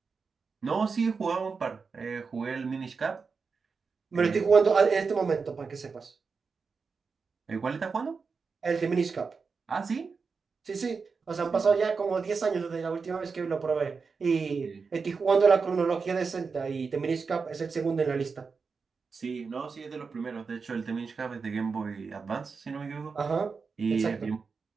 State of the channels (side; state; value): left; quieter; 5.0 dB